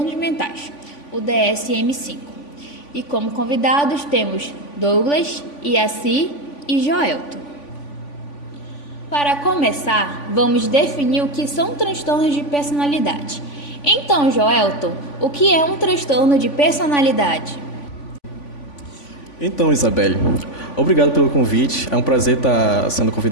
Mentais, o DSM-5. E como convidados temos Douglas, Iaci e Joelton. Para começar, vamos definir o que são transtornos de personalidade. Então, Joelton, o que é um transtorno de personalidade? Então, Isabelle, obrigado pelo convite. É um prazer estar sendo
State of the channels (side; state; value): right; late; 3.5 ms